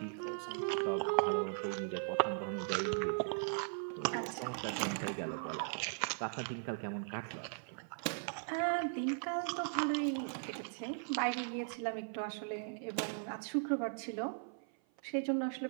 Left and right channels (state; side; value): silent; left; 52 dB below the other